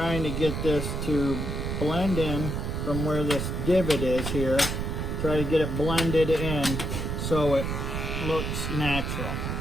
to get this to blend in from where this divot is here. Try to get it blended in so it looks natural.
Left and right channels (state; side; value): noise; right; rumble, 2 dB below the sound